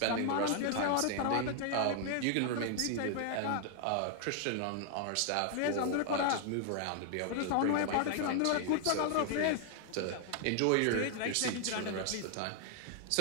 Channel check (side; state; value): both; different; correlation 0.00